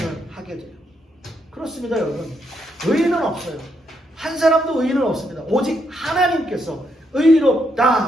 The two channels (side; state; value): both; normal; correlation 0.78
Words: 하게 돼요. 그렇습니다, 여러분. 의인은 없어요. 한 사람도 의인은 없습니다. 오직 하나님께서